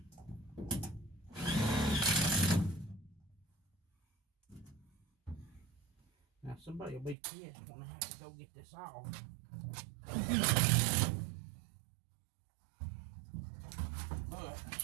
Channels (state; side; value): drops out; left; at 7.2 s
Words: Now somebody will be pissed when I have to go get this off. But